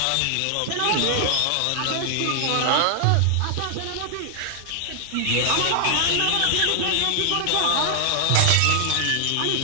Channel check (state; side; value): different; both; correlation 0.00